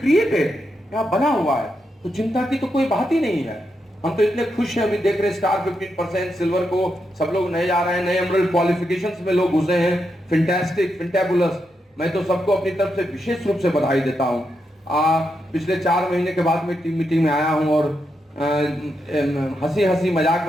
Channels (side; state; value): both; normal; correlation 0.84